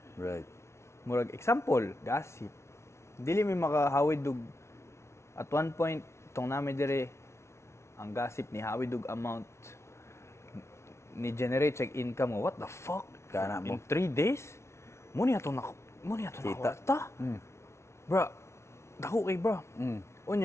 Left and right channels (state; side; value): late; right; 0.13 ms